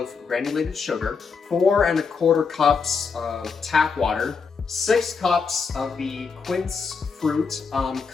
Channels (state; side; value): quieter; right; 5.3 dB